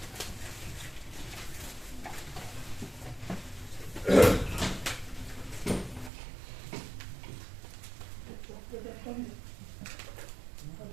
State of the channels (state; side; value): drops out; left; at 6.1 s